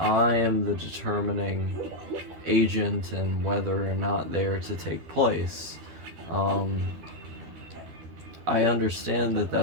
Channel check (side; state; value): left; late; 13 ms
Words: am the determining agent and whether or not they are to take place. I understand that